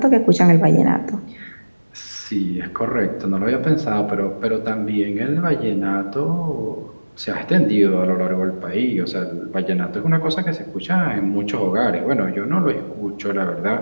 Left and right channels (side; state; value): both; inverted; correlation -1.00